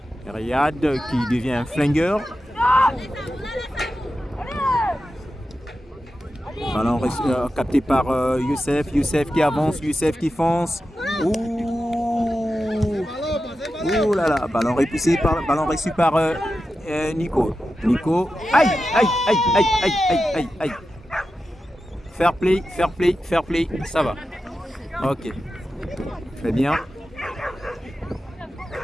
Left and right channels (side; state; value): both; normal; correlation 0.91